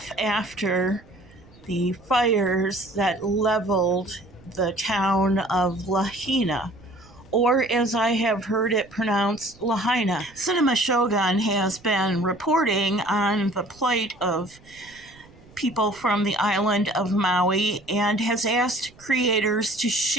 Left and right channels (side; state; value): right; noise; rumble, 26 dB below the sound